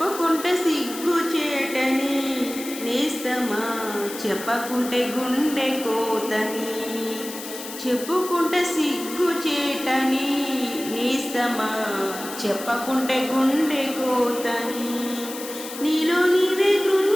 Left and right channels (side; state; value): left; noise; hiss, 11 dB below the sound